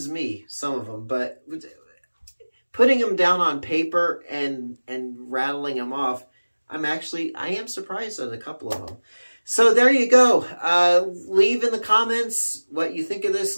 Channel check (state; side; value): inverted; both; correlation -1.00